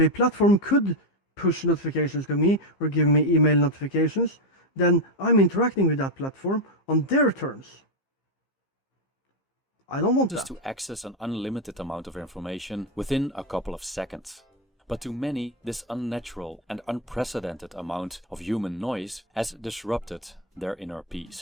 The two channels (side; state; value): both; normal; correlation 0.06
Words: platform could push notifications to me or give me email notifications, then I'm interacting with that platform on their terms. I don't want that. To access an unlimited amount of information within a couple of seconds. But to many, this unnatural and unprecedented amount of human noise has disrupted their inner